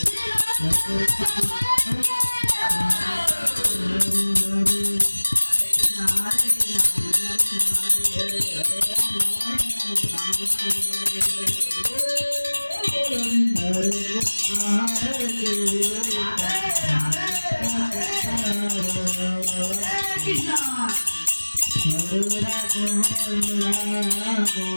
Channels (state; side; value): inverted; both; correlation -1.00